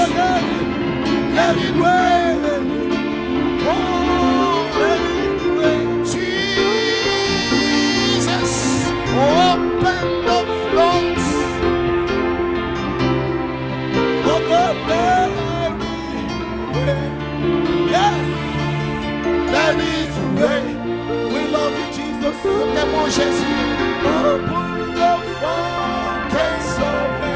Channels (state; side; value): identical; both; correlation 1.00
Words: let it rain. Let it rain. Oh God, let it rain. Yes, let it rain. We love you, Jesus. Open the fountains of